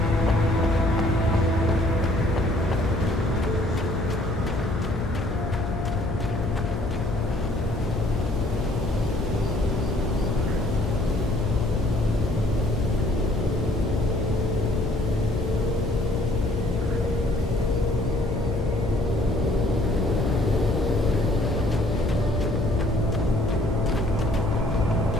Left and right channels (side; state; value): left; noise; hum, 5 dB below the sound